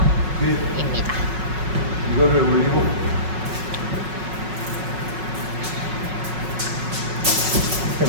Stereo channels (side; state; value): left; late; 5.4 ms